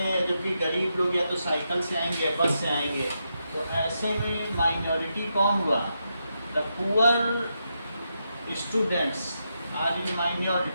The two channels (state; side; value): inverted; both; correlation -0.84